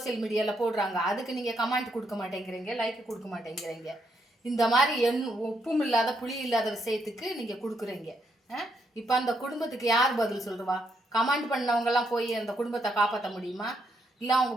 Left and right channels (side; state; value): both; normal; correlation 0.77